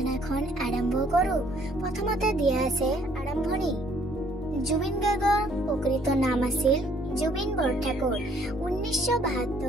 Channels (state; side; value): normal; both; correlation 0.63